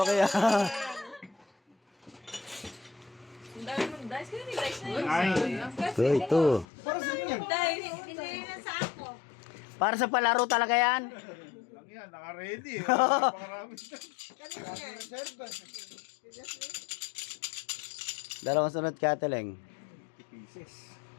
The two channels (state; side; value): drops out; right; at 6.7 s